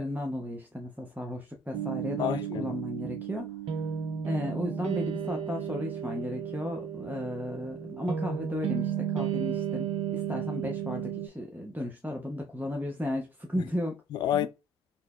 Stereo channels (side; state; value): both; normal; correlation 0.58